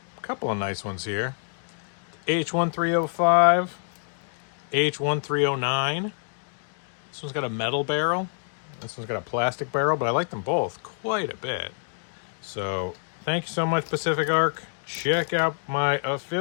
couple of nice ones here. H1305, H1309. This one's got a metal barrel. This one's got a plastic barrel, but I like them both quite a bit. So thank you so much, Pacific Arc. Check out my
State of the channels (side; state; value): right; silent; 60 dB below the other